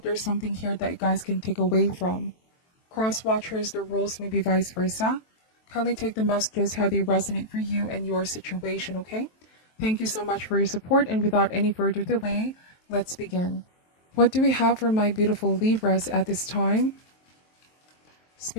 there's something here that you guys can take away from. Cross watchers, the rules may be vice versa. Kindly take the messages how they resonate for you and your situation, okay? Thank you so much for your support, and without any further delay, let's begin. What do we have for my beautiful Libras at this time?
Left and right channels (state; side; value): late; right; 23 ms